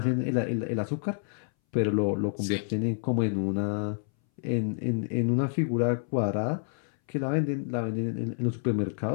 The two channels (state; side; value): silent; right; 59 dB below the other